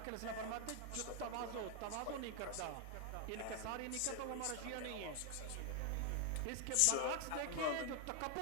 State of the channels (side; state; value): both; different; correlation 0.00